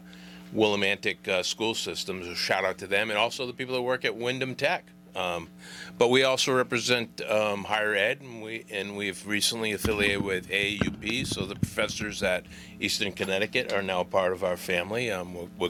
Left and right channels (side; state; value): both; identical; correlation 1.00